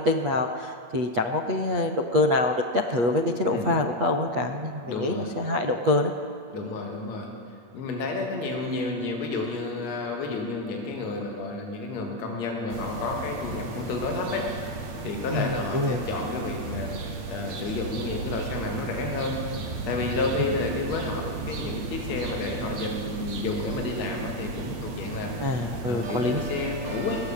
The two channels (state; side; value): late; left; 8.9 ms